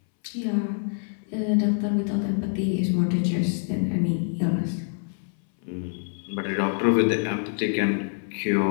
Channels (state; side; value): silent; right; 61 dB below the other